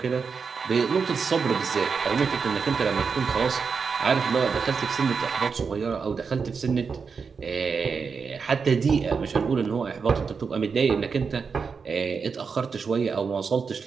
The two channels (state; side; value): quieter; left; 5.5 dB